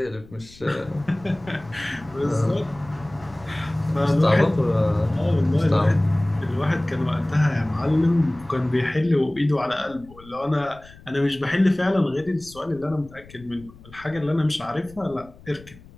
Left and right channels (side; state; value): left; noise; rumble, 22 dB below the sound